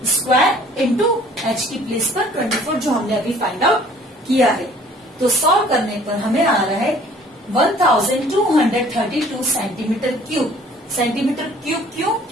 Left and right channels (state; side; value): normal; both; correlation 0.53